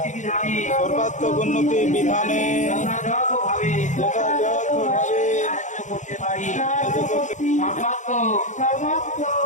সর্বাত্মক উন্নতি বিধানে যথাযথভাবে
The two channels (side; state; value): right; late; 0.35 ms